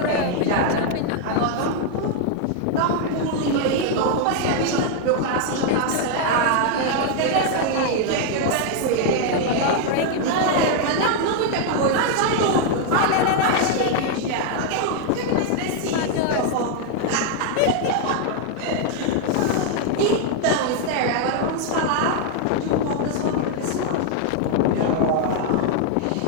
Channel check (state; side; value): different; both; correlation 0.00